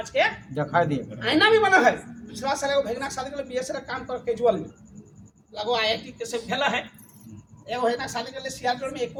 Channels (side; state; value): both; identical; correlation 1.00